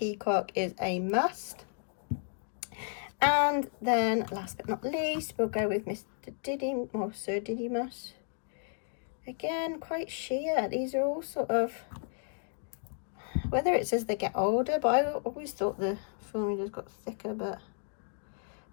is a must. And then last but not least, we'll go with Mr. Didymus, or Sir Didymus. Again, quite sheer. These are all sort of, whether it's as they get older, but I always thought the formulas got thicker, but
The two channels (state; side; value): silent; right; 56 dB below the other